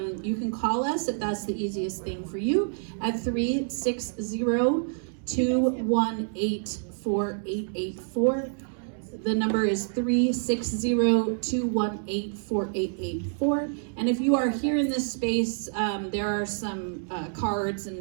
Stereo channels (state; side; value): silent; left; digital silence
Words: You can call us if that's the easiest thing for you at 360-218-4884. The number is 360-218-4884. And if you are here in this space, there are some cards